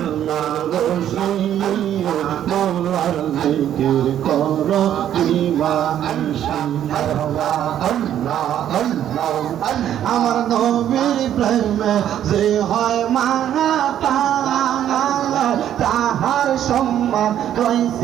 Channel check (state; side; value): quieter; left; 10.7 dB